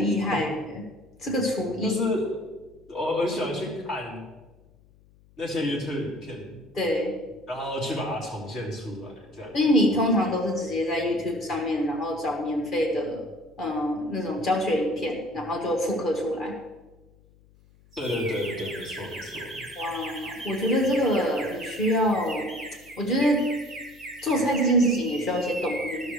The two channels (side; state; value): left; noise; hum, 28 dB below the sound